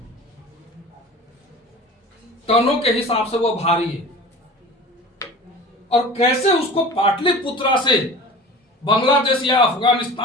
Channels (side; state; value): both; normal; correlation 0.38